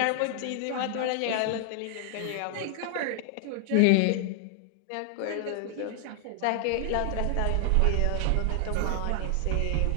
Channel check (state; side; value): different; both; correlation 0.00